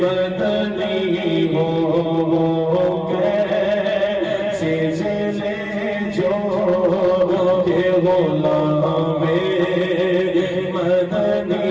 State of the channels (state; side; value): identical; both; correlation 1.00